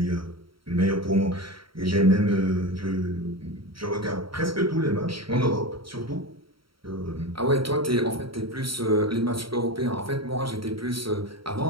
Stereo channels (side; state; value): left; late; 0.74 ms